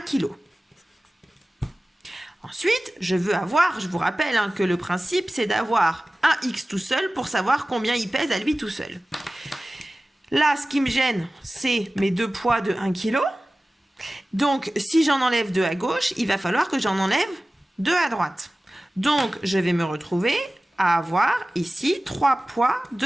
kg. Ensuite, je veux avoir, je vous rappelle hein, que le principe, c'est d'avoir un x tout seul pour savoir combien il pèse à lui tout seul. Là, ce qui me gêne, c'est mes deux poids de 1 kg. Donc, si j'en enlève 2 à gauche, il va falloir que j'en enlève 2 à droite. Donc, je vais me retrouver à avoir ici 3 poids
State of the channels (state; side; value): normal; both; correlation 0.97